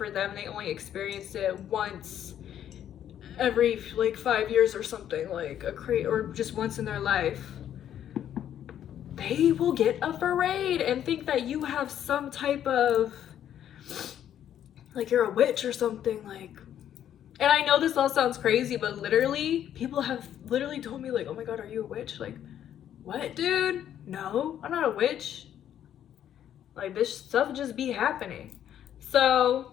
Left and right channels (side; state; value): right; quieter; 10.4 dB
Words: them they only experienced it once every like 5 years or something, like or just once in their life, they will get afraid and think that you have some type of, like, you're a witch or something, like. And I know this all sounds crazy, but literally, people have literally told me, like, oh my god, are you a witch? Like, what, dude? No, I'm not a witch. Like, this stuff just be happening. So,